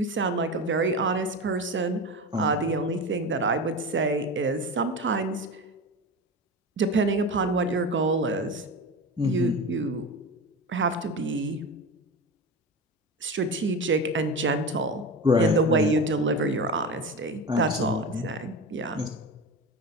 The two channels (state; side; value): normal; both; correlation 0.26